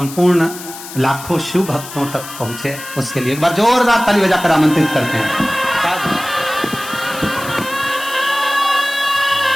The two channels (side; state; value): left; noise; hiss, 13 dB below the sound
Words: लाखों शिव भक्तों तक पहुंचे, उसके लिए एक बार जोरदार ताली बजाकर आमंत्रित करते हैं।